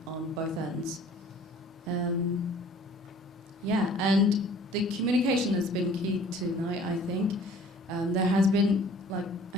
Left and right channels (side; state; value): both; normal; correlation 0.52